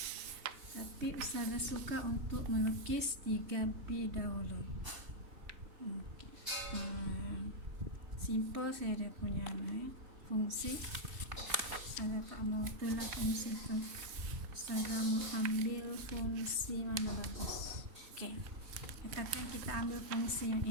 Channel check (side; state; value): left; late; 3.2 ms